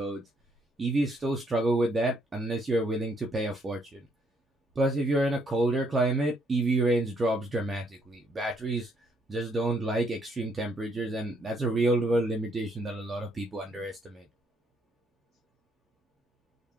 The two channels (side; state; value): both; normal; correlation 0.70